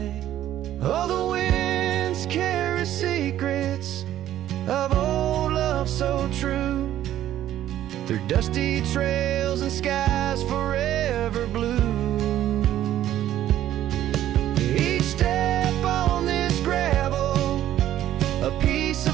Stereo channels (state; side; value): quieter; left; 12.4 dB